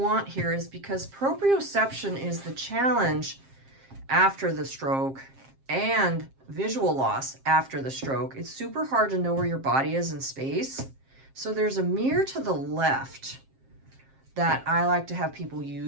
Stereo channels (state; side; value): late; left; 7.5 ms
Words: here is, because proprioception is the challenge after the stroke and visual loss after the stroke, it's super hard to know where your body is in space. So there's a mirror to the left that I like to have people